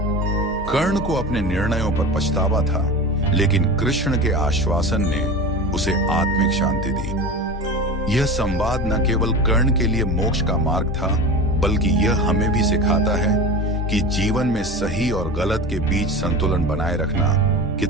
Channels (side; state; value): both; normal; correlation 0.30